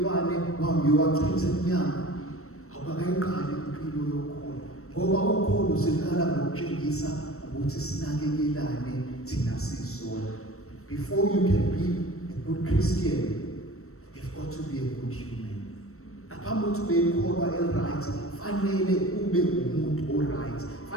wambiwa wachitha emnyango. Awukakayiqali impilo yokholo ngoba ukholo uziqala ngokutshengisa ukuthi sinakekelane thina sisodwa. Before you can be a good Christian, you've got to be a good human. Ngaphambi kokuthi ube yikholwa right, fanele ube umuntu oright.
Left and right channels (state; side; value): late; right; 0.63 ms